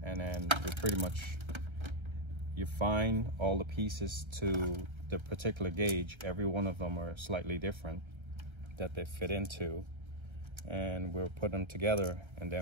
And then you pretty much, you find all the pieces to the particular gauge. Every one of them are slightly different that they fit into, and we'll put them together and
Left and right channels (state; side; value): late; left; 1.3 ms